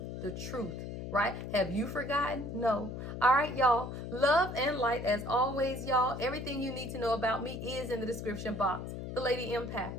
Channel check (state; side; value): noise; left; hum, 7 dB below the sound